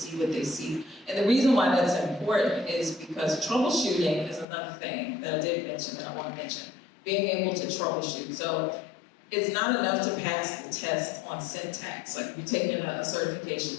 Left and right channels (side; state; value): right; drops out; at 4.5 s